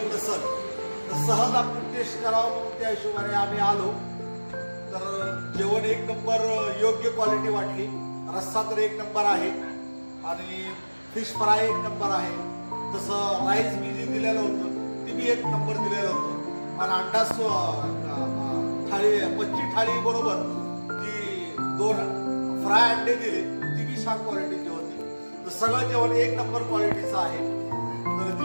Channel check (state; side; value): inverted; both; correlation -1.00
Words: नसल तर सहज आपण टेस्ट करावं म्हणून त्या हिशोबाने आम्ही आलो. तर जेवण एक नंबर योग्य क्वालिटी वाटली. रस्सा तर एक नंबर आहे आणि फिश फ्राय एक नंबर आहे. तसं राईस मी जे दिलेलं होतं ते बी एक नंबर दिलेलं होतं. आणि अंडा थाळी मच्छी थाळी बरोबर जी 2 फ्राय अंडे दिले ती बी छान क्वालिटीची होती. तर सगळं जेवण एक नंबर क्वालिटीचं आहे. तर